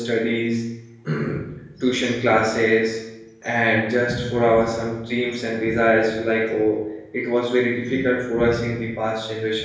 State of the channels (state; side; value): identical; both; correlation 1.00